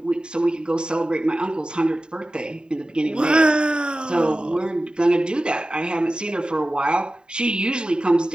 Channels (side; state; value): left; late; 0.049 ms